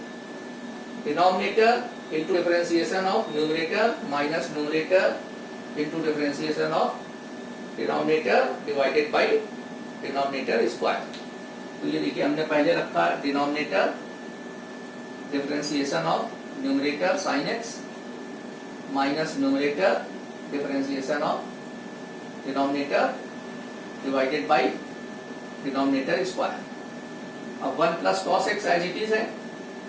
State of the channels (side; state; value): both; identical; correlation 1.00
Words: denominator into differentiation of numerator minus numerator into differentiation of denominator divided by denominator square. तो ये देखिए हमने पहले रखा denominator differentiation of numerator sine x minus numerator differentiation of denominator divided by denominator square. अब 1 plus cos x as it is है।